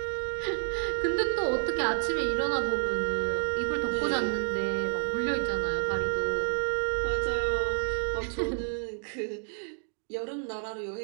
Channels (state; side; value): silent; left; 58 dB below the other